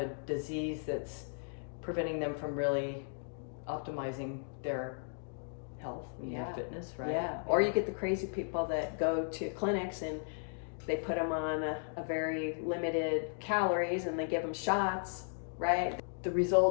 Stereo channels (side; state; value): right; silent; digital silence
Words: disease that's preventing them from really optimizing their health and their fitness, right? Yeah. Or you get the crazy people that go to clinics and they put them on a very limited calories, and they give them shots, right? The